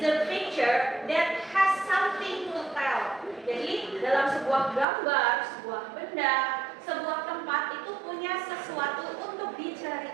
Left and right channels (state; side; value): drops out; left; at 4.9 s